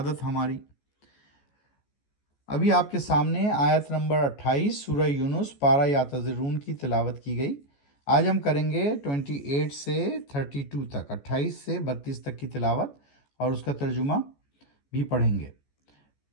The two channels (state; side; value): late; right; 14 ms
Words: ہماری؟ ابھی آپ کے سامنے آیت نمبر 28 سورہ یونس پارہ یعتذرون کی تلاوت کی گئی۔ آج ہم کریں گے 28 سے 32 تک، 28 سے 32 تک کی تلاوت اور اس کا ترجمہ بھی پڑھیں گے۔